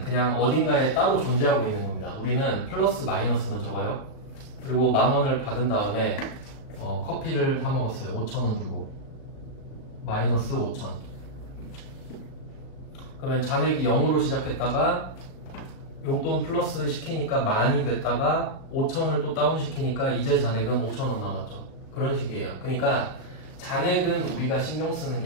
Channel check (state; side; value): late; right; 37 ms